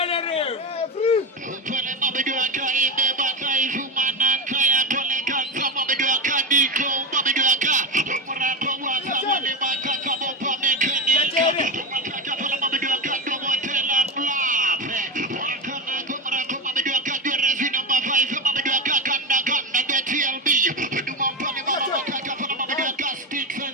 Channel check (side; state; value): both; normal; correlation 0.17